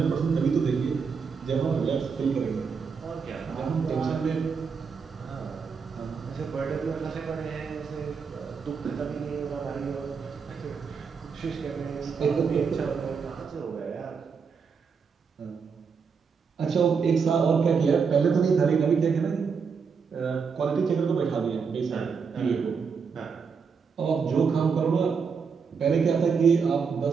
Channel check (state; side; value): quieter; left; 5.8 dB